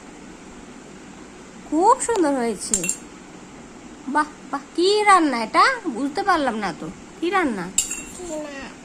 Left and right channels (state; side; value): identical; both; correlation 1.00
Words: খুব সুন্দর হয়েছে। বাহ বাহ, কি রান্না এটা? বুঝতে পারলাম না তো, কি রান্না?